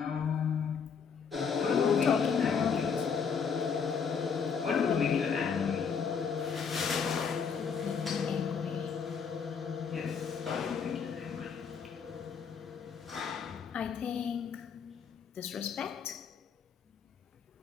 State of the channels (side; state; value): right; quieter; 6.3 dB